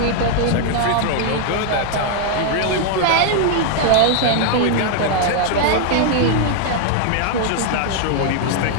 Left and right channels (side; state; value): both; different; correlation 0.00